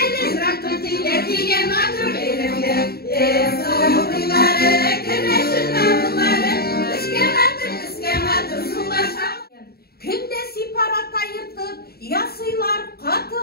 Күнде сипарат айыртып, ясыйлар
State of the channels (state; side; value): late; right; 0.45 ms